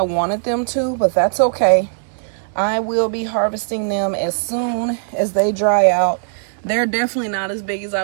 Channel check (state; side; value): silent; left; digital silence